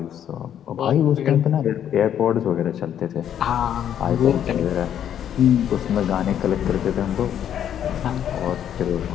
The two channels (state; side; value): quieter; right; 9.8 dB